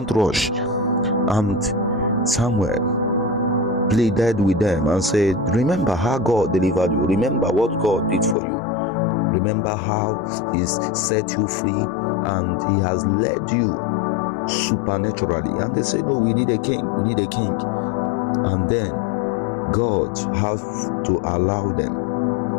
rush. And Samuel pleaded with them and said, remember how God delivered you. Remember what God did for you. Remember how he's set you free and he has led you supernaturally. And they say, no, we need a king. We need a king. And then God has to allow them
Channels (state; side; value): drops out; right; at 8.3 s